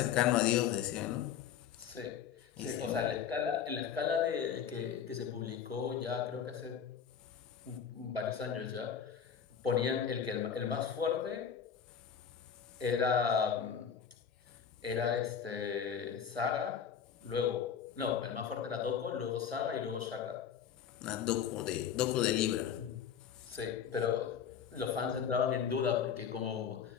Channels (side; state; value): right; quieter; 7.9 dB